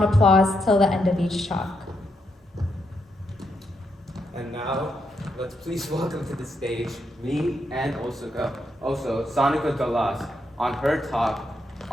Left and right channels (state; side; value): normal; both; correlation 0.80